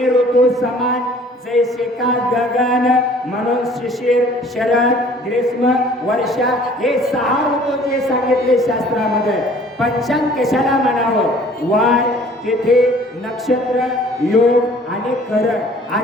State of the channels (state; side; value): normal; both; correlation 0.53